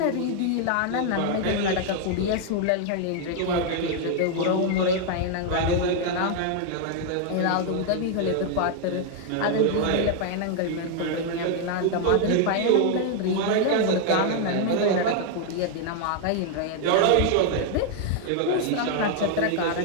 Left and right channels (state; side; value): different; both; correlation 0.00